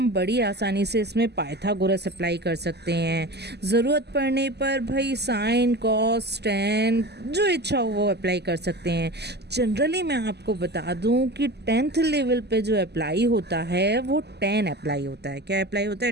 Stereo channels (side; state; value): left; late; 0.49 ms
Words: बड़ी आसानी से इसमें पाइथागोरस अप्लाई कर सकते हैं। ज़रूरत पड़ने पर भाई साइन, कॉस, टेन, जो इच्छा हो वो अप्लाई कर सकते हैं। जनरली मैं आपको बता दूं कि 10th लेवल पे जो अप्लाई होता है वो tan अप्लाई होता है। क्या अप्लाई होता